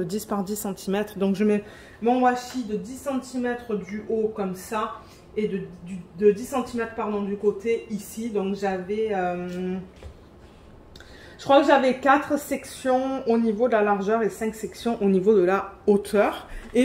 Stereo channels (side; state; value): both; identical; correlation 1.00